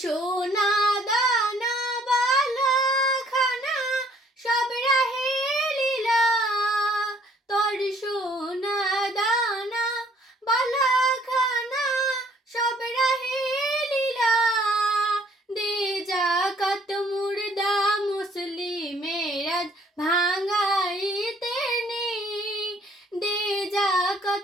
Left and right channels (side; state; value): both; normal; correlation 0.61